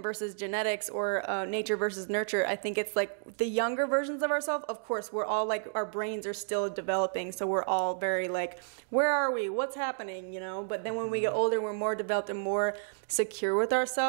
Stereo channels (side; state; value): left; silent; digital silence